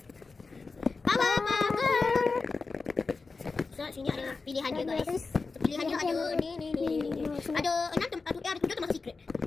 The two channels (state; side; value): quieter; right; 4.2 dB